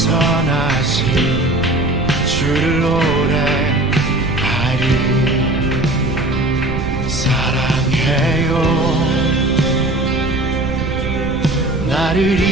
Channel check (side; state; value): right; noise; rumble, 7 dB below the sound